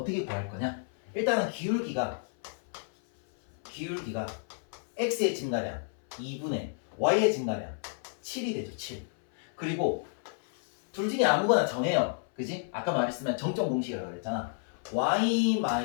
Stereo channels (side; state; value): right; silent; 57 dB below the other